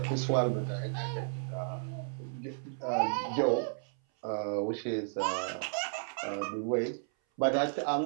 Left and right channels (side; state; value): left; silent; 56 dB below the other